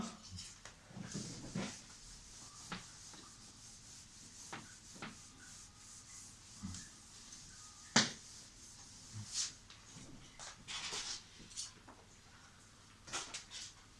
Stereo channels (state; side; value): identical; both; correlation 1.00